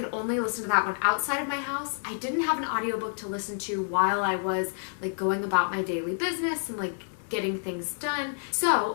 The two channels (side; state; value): right; silent; 59 dB below the other